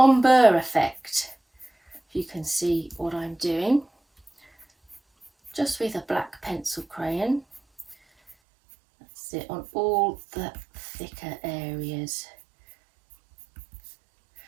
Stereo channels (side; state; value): left; drops out; at 8.3 s